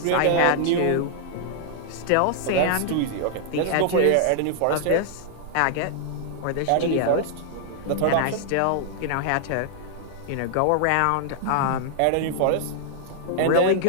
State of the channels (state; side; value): different; both; correlation -0.01